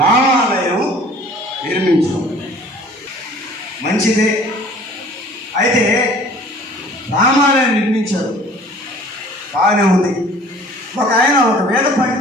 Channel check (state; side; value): normal; both; correlation 0.50